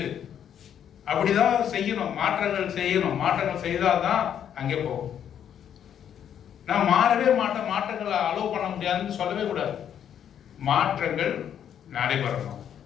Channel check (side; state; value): right; quieter; 9.2 dB